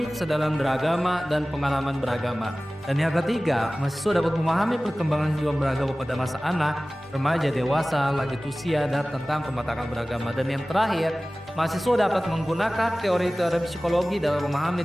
kesadaran beragama dan pengalaman beragama. Dan yang ketiga, mahasiswa dapat memahami perkembangan kehidupan beragama pada masa anak, remaja, dewasa, lanjut usia, dan tentang pematangan beragama. Dan yang terakhir, mahasiswa dapat menggunakan teori-teori psikologi dalam memahami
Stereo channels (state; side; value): normal; both; correlation 0.97